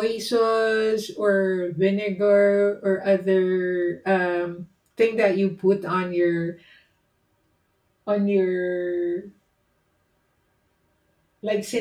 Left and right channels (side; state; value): both; identical; correlation 1.00